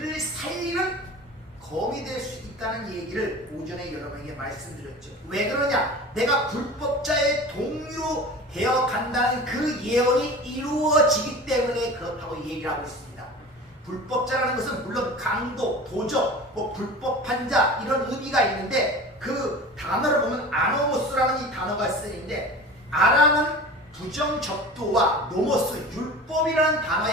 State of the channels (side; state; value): both; normal; correlation 0.36